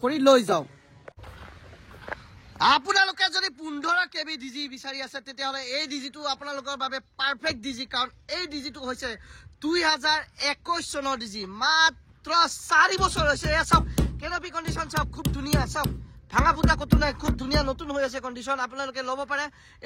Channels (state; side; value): identical; both; correlation 1.00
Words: करि लई जाओ আপোনালোকে যদি 15 কেবি ডিজি বিচাৰি আছে তেতিয়াহলে এই ডিজিটো আপোনালোকৰ বাবে পাৰফেক্ট ডিজি কাৰণ এই ডিজিটো হৈছে 2021 চনৰ ডিজি মাত্ৰ 4 বছৰ হৈছে এ সব কেনপি কন্ডিশন সব খুব ধুনিয়া সব ভাঙা ফুটা কত নাই খুব ধুনিয়া নতুন হৈ আছে কন্ডিশন আপোনালোকে লব পাৰে